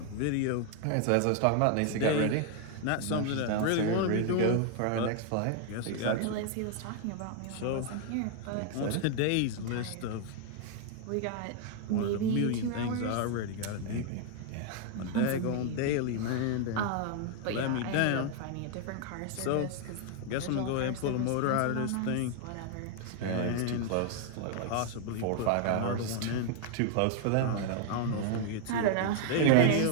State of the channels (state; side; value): different; both; correlation 0.00